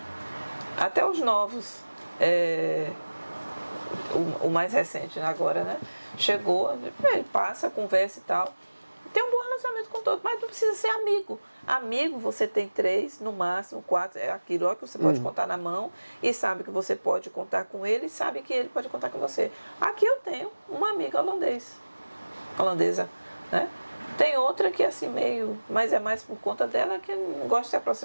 Até os novos, o mais recente agora, né? Chegou, ele passa, conversa e tal. Tem um bom relacionamento com todos, mas não precisa ser amigo. Amigo, você tem 3, no máximo 4, é aquilo que você pode contar na mão e sabe que você pode contar com ele e sabe que ele pode contar com você. Aqui eu tenho uma amiga holandesa, né? Tem outra que é assim meio, mas é mais por conta dela que não gosta de se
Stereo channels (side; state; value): both; inverted; correlation -1.00